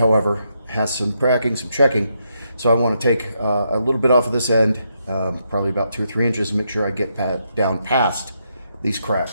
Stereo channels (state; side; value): inverted; both; correlation -0.79